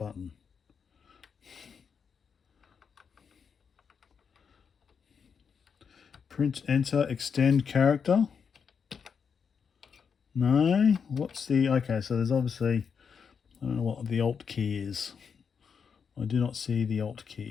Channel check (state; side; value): quieter; right; 6.4 dB